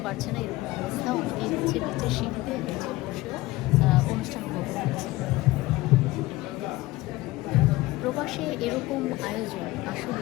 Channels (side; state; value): right; quieter; 18.9 dB